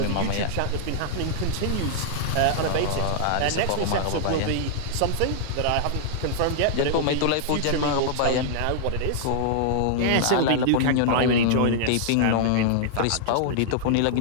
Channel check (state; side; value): different; both; correlation -0.01